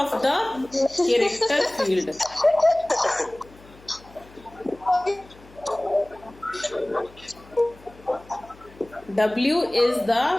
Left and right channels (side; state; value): left; noise; hum, 24 dB below the sound